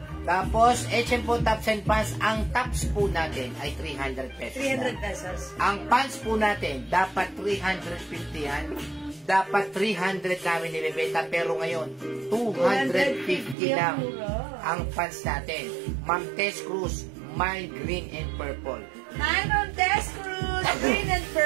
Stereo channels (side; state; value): left; drops out; at 13.6 s